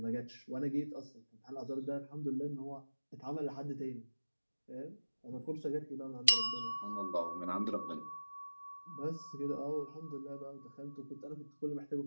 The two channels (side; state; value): both; inverted; correlation -1.00